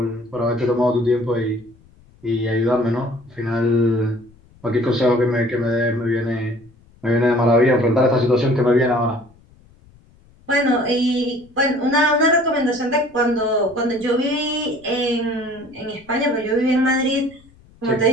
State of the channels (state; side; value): noise; left; rumble, 28 dB below the sound